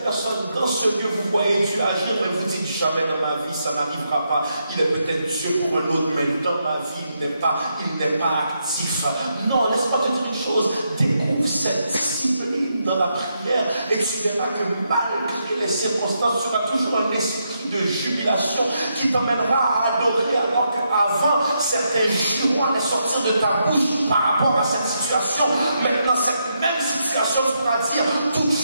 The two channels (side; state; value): both; inverted; correlation -0.81